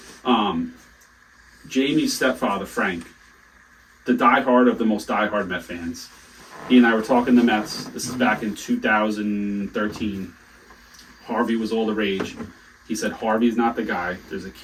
Jamie's stepfather, Frank, the diehard of the most diehard Met fans. He and I were talking the Mets. This is back in 2013. Harvey was all the rage. He said Harvey's not the guy. There's a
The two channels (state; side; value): identical; both; correlation 1.00